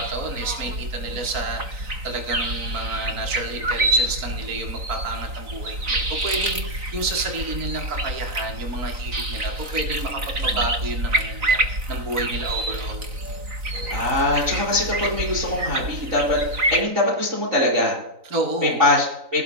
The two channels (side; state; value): left; late; 3.9 ms